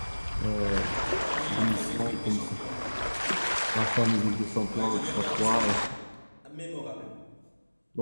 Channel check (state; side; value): inverted; both; correlation -1.00